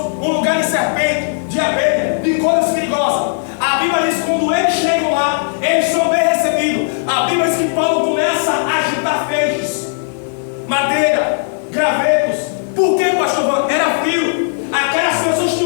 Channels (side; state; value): right; silent; digital silence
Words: um lugar de serpente, de abelha, de coisas perigosas. A Bíblia diz que quando eles chegam lá, eles são bem recebidos. A Bíblia diz que Paulo começa a agitar feixes, madeira, gravetos. Por que, pastor? Era frio. Aquelas pessoas